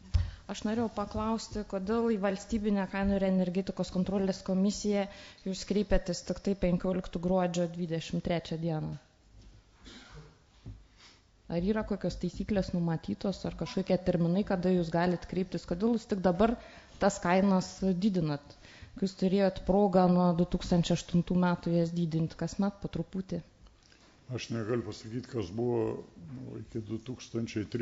Aš norėjau paklausti, kodėl į valstybinę kainų ir energetikos kontrolės komisiją jūs kreipėtės tik tai 15 gruodžio 23 dieną. Ar yra kokios taisyklės numatytos, ar kažkokie terminai, kada jūs galite kreiptis, kodėl jūs tik dabar tas kainas didinat, kai jūs turėjot progą nuo 2008 metų jas didinti kasmet po truputį? Aš negaliu pasakyti, kas buvo iki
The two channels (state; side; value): identical; both; correlation 1.00